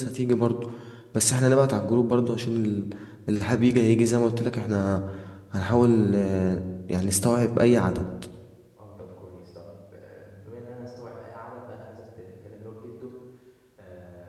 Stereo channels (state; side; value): identical; both; correlation 1.00